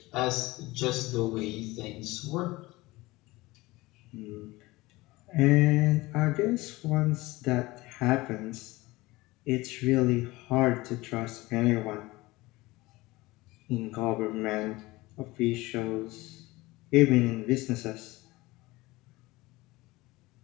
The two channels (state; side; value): quieter; right; 20.6 dB